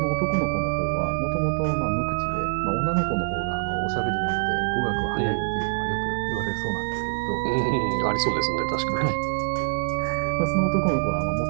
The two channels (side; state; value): left; silent; 62 dB below the other